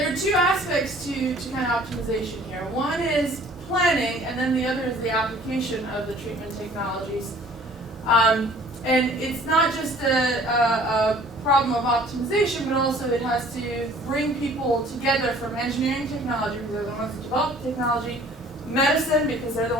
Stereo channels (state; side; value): normal; both; correlation 0.53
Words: are two aspects to kind of optimization here. One is planning, and then the other is the application of the treatment technologies. And it's not just a problem of optimization, but also it has to bring people together from engineering technology, because they're the ones that develop the technology, medicine, because they're the